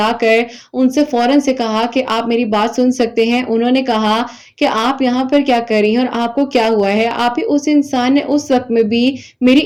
کر ان سے فوراً سے کہا کہ آپ میری بات سن سکتے ہیں۔ انہوں نے کہا کہ آپ یہاں پر کیا کر رہی ہیں اور آپ کو کیا ہوا ہے۔ آپ ہی اس انسان نے اس وقت میں بھی میری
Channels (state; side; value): identical; both; correlation 1.00